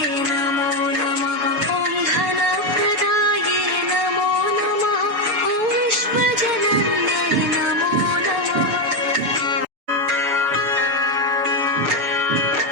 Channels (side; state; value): left; late; 7.0 ms